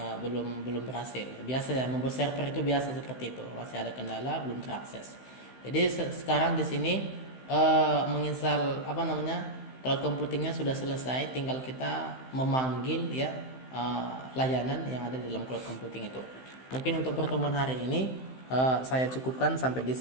belum berhasil. Biasa ya, membuat server itu biasa seperti itu. Masih ada kendala, belum terakses. Jadi sekarang di sini menginstal cloud computingnya sudah selesai. Tinggal kita memanggil ya layanan yang ada di dalam cloud computing itu. Mungkin untuk pertemuan hari ini saya cukupkan sampai di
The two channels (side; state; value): right; late; 15 ms